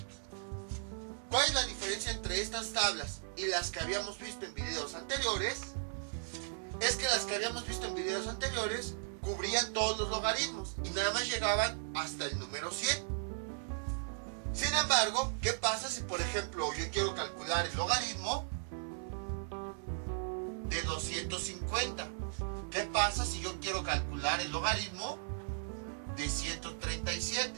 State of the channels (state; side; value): silent; left; 53 dB below the other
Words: ¿Cuál es la diferencia entre estas tablas y las que habíamos visto en videos anteriores? Es que las que habíamos visto en videos anteriores cubrían todos los logaritmos y nada más llegaban hasta el número 100. Sin embargo, ¿qué pasa si, por ejemplo, yo quiero calcular el logaritmo de 250? ¿Qué pasa si yo quiero calcular el logaritmo de 137?